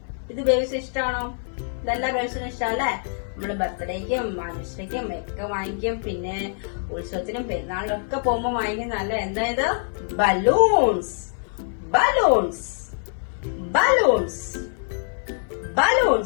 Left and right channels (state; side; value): silent; right; 57 dB below the other